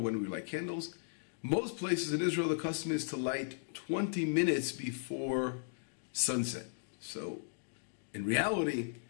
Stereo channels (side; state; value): right; silent; digital silence